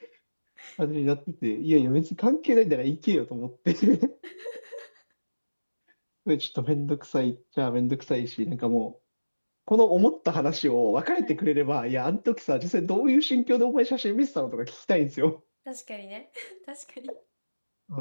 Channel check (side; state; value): both; inverted; correlation -1.00